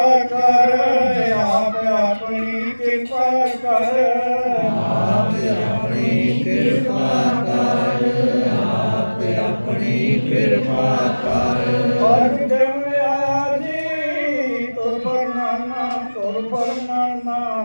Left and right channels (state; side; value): inverted; both; correlation -1.00